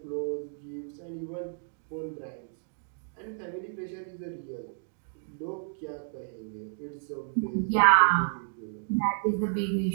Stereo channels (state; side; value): silent; left; digital silence